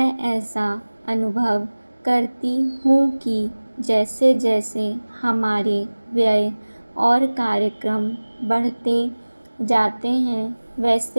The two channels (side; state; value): both; inverted; correlation -1.00